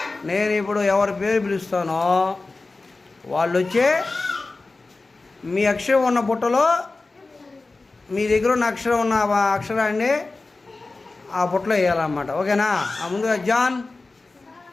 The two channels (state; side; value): quieter; right; 3.5 dB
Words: నేను ఇప్పుడు ఎవరి పేరు పిలుస్తానో వాళ్ళు వచ్చి మీ అక్షరం ఉన్న బుట్టలో మీ దగ్గర ఉన్న అక్షరం ఉన్న అక్షరాన్ని ఆ బుట్టలో వేయాలన్నమాట. ఓకేనా? ముందుగా జాన్,